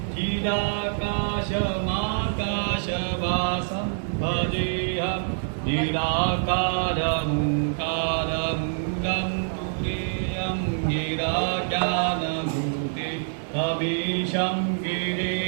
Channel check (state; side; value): silent; left; 61 dB below the other